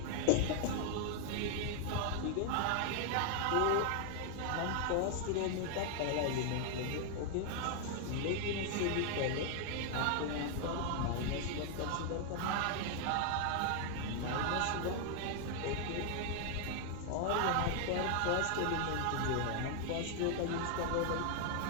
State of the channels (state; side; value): different; both; correlation 0.00